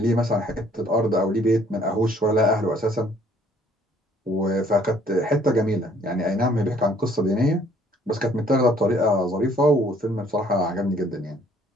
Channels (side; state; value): both; normal; correlation 0.61